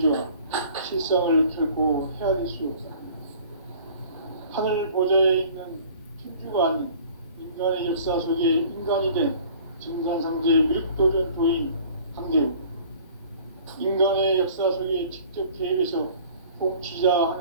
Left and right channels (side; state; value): both; inverted; correlation -0.49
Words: 실상을 결코 헤아릴 수 없다. 하늘 보좌에 있는 천주가 아닌 인간의 역사 속에 인간이 된 증산상제 미륵도전 도인 강대우. 인간의 역사 속에 직접 개입해서 통치자